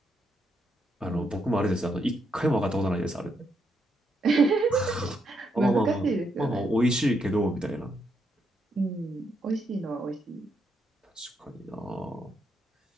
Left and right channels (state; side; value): normal; both; correlation 0.79